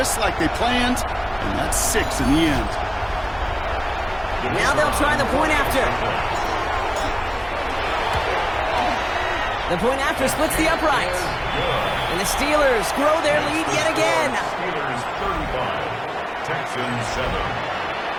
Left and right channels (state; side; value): identical; both; correlation 1.00